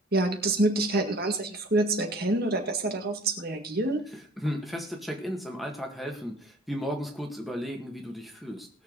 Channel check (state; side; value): normal; both; correlation 0.51